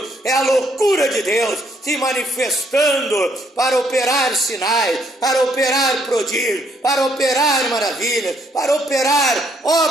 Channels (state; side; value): normal; both; correlation 0.69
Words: é a loucura de Deus se manifestando para operar sinais, para operar prodígios, para operar maravilhas, para operar